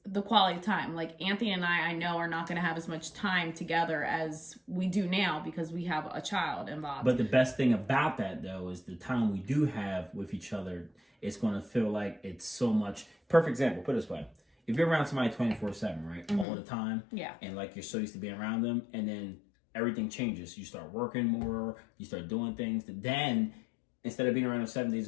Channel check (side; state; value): right; drops out; at 16.4 s